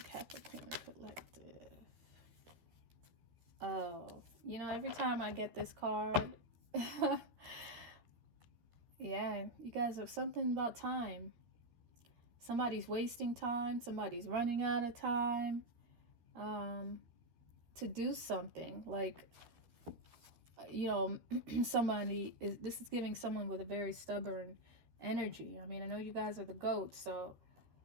Capricorn collective. Oh, you know, every time I get this card... Yeah, you guys have something about time. Somebody's wasting time. Somebody's running out of time to do something. Like, you know, this is giving someone with a very stubborn energy. I mean, I know you guys are the goats, so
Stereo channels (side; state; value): left; late; 13 ms